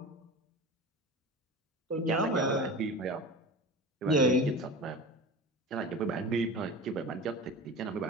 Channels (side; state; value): both; normal; correlation 0.32